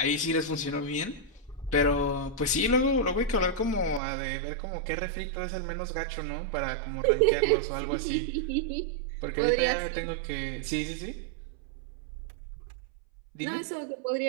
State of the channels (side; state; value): left; drops out; at 4.0 s